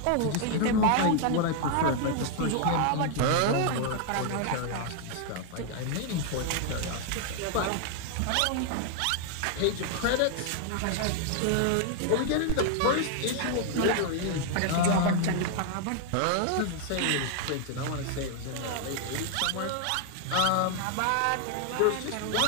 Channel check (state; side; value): different; both; correlation 0.00